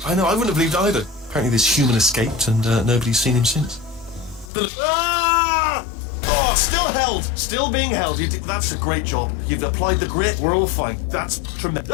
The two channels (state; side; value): drops out; right; at 4.5 s